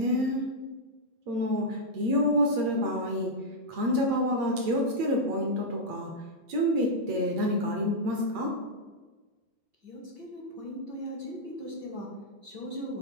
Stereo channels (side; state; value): left; late; 8.6 ms